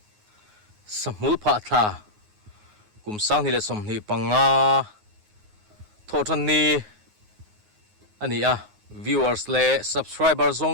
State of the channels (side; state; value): left; late; 9.5 ms